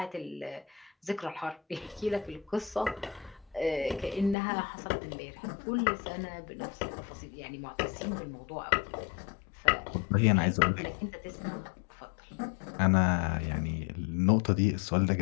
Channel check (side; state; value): right; drops out; at 4.4 s